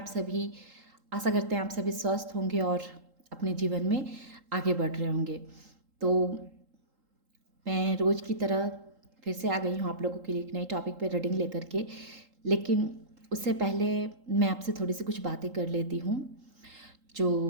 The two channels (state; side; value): late; left; 3.8 ms